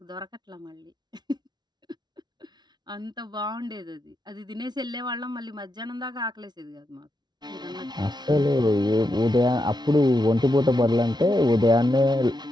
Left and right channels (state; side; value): late; left; 0.20 ms